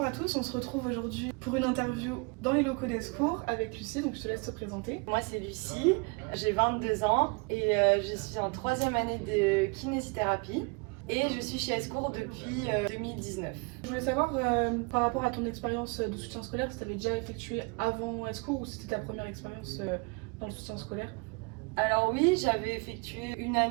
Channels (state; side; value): quieter; left; 31.7 dB